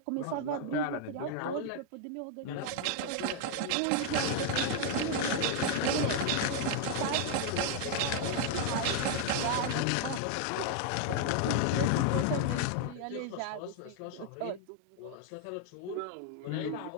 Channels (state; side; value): different; both; correlation 0.00